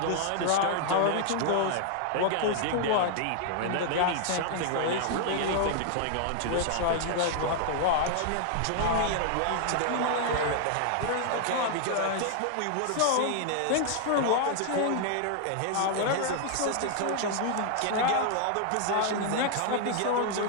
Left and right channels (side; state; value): both; different; correlation 0.00